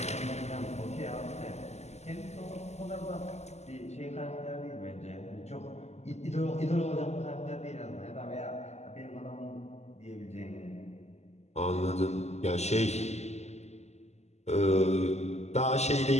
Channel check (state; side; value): late; right; 0.32 ms